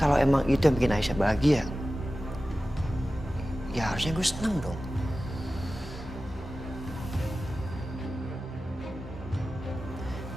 emang itu yang bikin Aisyah bahagia, ya harusnya gue seneng dong.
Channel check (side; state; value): both; normal; correlation 0.95